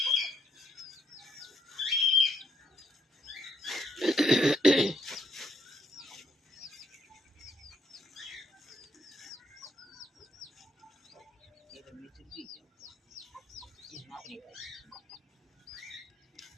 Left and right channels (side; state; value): both; normal; correlation 0.73